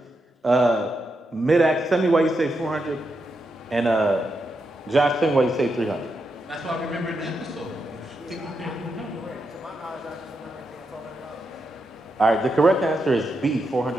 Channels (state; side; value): normal; both; correlation 0.84